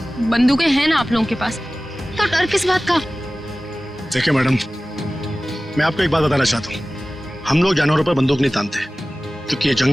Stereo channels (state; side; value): normal; both; correlation 0.97